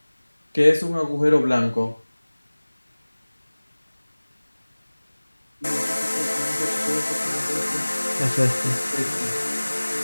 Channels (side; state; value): both; inverted; correlation -1.00